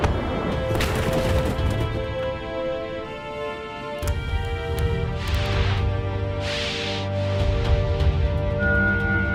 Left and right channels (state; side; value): identical; both; correlation 1.00